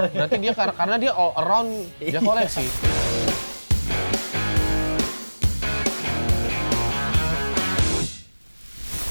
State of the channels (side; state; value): both; inverted; correlation -1.00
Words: ya. Berarti dia karena dia all around dia koleksi.